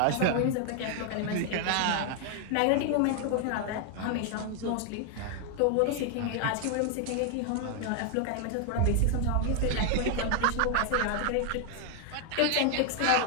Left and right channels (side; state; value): both; different; correlation 0.00